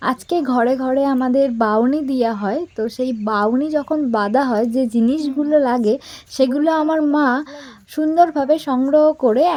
আজকে ঘরে ঘরে আমাদের বাউনি দেওয়া হয়। তো সেই বাউনি যখন বাঁধা হয়, যে জিনিসগুলো লাগে সেগুলো আমার মা সুন্দরভাবে সংগ্রহ করে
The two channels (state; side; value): identical; both; correlation 1.00